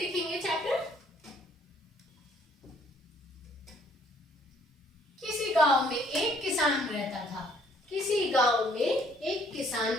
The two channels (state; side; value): normal; both; correlation 0.62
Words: चैप्टर। किसी गांव में एक किसान रहता था। किसी गांव में एक किसान